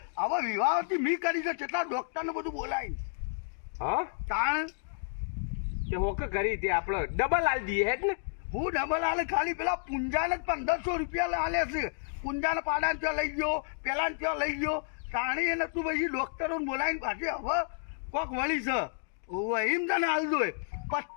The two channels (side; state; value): right; silent; digital silence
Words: હવે વિવાહથી મી કરી છે. કેટલા ડોક્ટરને બધું બોલાવી. હા તાણ તે હોકે કરી તે આપણે ડબલ હાલ દઈએ હેડ ને. હું ડબલ હાલે ખાલી પેલા પુંજાને 1500 રૂપિયા હાલે છે. પુંજાને પાડાને ત્યાં લઈ ગયો પેલાને ત્યાં લઈ ગયો તાણી એને તું પછી ડોક્ટરોને બોલાવીને પાછી હવે કોક વળી છે. એમ તને હાલ દો